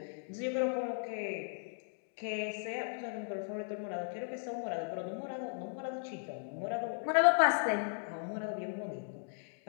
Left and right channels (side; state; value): right; silent; digital silence